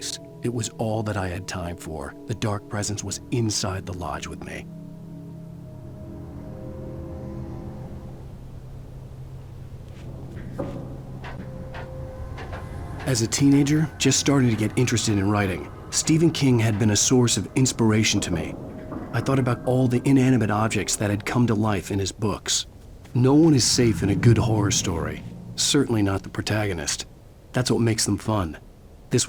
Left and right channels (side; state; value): both; identical; correlation 1.00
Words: It was all that I had time for. The dark presence was inside the lodge with me. As a teenager, just starting to get interested in writing, Stephen King had been a source of inspiration to me. I thought about all the inanimate objects that had come to life in his books. No one is safe in a good horror story. Certainly not the protagonist. That's what makes them fun. This